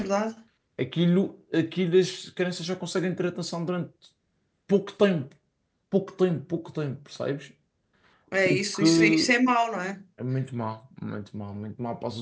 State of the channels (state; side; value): identical; both; correlation 1.00